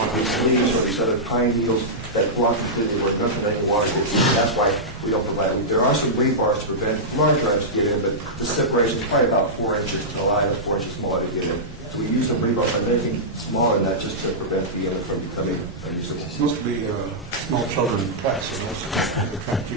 leaves or these other pine needles that block completely where nothing any water gets in. That's why we don't provide it. There are some weight bars to prevent larger items to get in, but the separation is probably about 4 inches to allow it 4 inches smaller to get in. So we use some rebar by anything smaller than that just to prevent the inlet from becoming unusable. It's supposed to be small children in class, so they're trying to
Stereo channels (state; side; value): normal; both; correlation -0.12